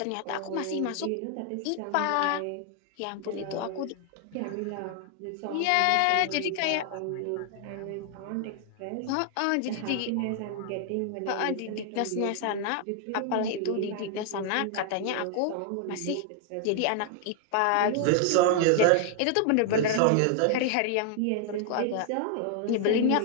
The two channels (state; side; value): different; both; correlation 0.00